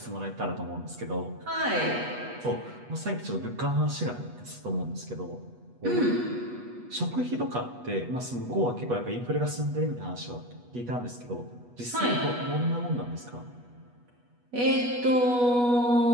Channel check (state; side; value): late; left; 8.2 ms